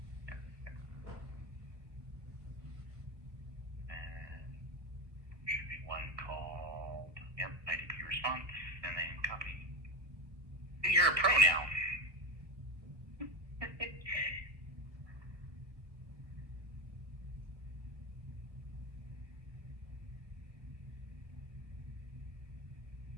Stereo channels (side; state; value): left; late; 1.5 ms